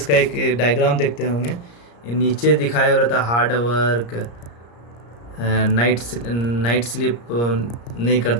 का एक डायग्राम देखते होंगे, ये नीचे दिखाया हो रहता हार्ड वर्क, नाइट स्लिप नहीं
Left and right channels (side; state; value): right; late; 34 ms